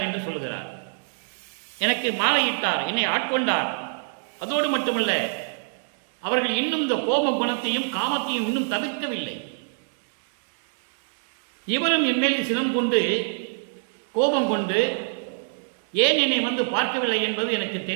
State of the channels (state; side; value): silent; left; digital silence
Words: என்று சொல்கிறார். எனக்கு மாலையிட்டார், என்னை ஆட்கொண்டார். அதோடு மட்டுமல்ல, அவர்கள் இன்னும் இந்த கோப குணத்தையும் காமத்தையும் இன்னும் தவிர்க்கவில்லை. இவரும் என் மேல் சினம் கொண்டு கோபம் கொண்டு ஏன் என்னை வந்து பார்க்கவில்லை என்பது எனக்கு